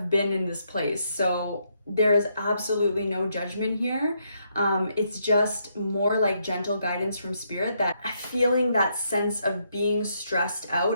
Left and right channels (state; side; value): inverted; both; correlation -0.76